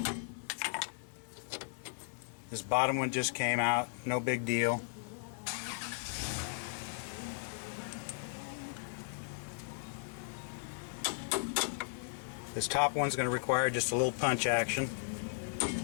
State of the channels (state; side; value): silent; right; digital silence